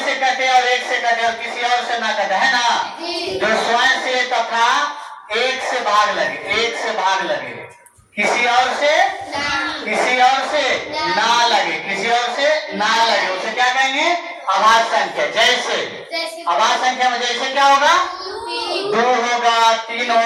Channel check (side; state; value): both; identical; correlation 1.00